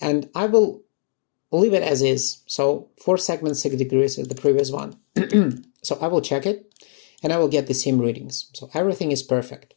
I will leave it as is. So 4 segments, 6 degrees is the previous one. So I will check it, and I will get the same readings. So everything is perfect.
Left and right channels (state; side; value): silent; right; digital silence